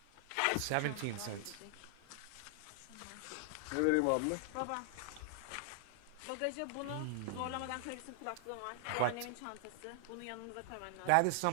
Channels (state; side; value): different; both; correlation 0.00